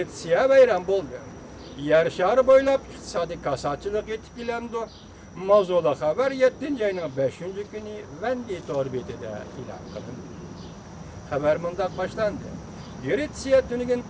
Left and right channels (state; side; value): identical; both; correlation 1.00